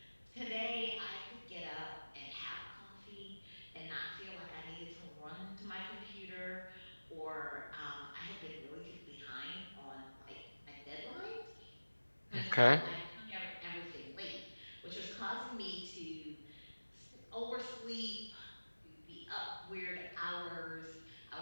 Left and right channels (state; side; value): inverted; both; correlation -1.00